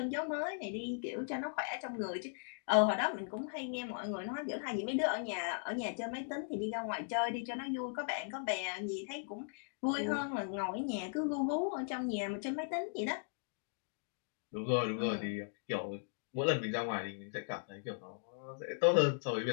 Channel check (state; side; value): silent; right; digital silence